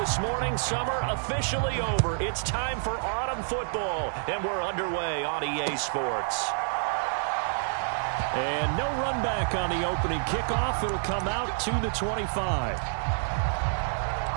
morning, summer officially over. It's time for autumn football, and we're underway on EA Sports. And no run back on the opening kickoff. It'll come out to the 25.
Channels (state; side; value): silent; left; digital silence